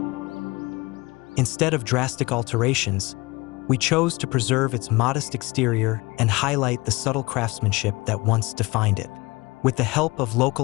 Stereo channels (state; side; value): quieter; right; 23.3 dB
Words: Instead of drastic alterations, we chose to preserve its modest exterior and highlight the subtle craftsmanship that once defined it. With the help of